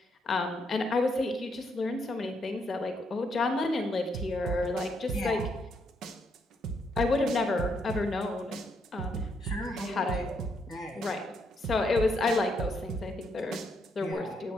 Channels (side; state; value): both; normal; correlation 0.76